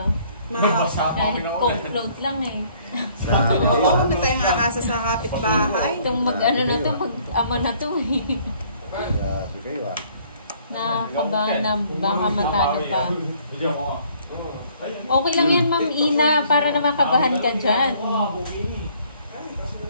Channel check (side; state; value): both; inverted; correlation -0.61